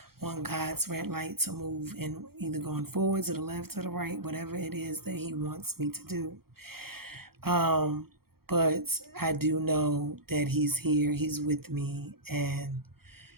on God's red light to move and either going forward to the left or the right, whatever it is that he wants me to do. But I do know that he's here, he's with me, and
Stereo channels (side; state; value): left; late; 0.94 ms